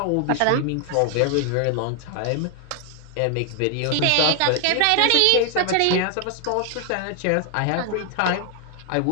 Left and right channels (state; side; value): different; both; correlation 0.00